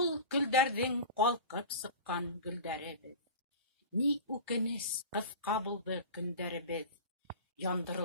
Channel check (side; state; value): both; inverted; correlation -0.33